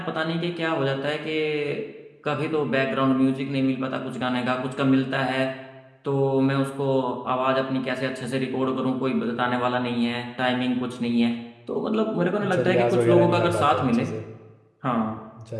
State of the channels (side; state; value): both; identical; correlation 1.00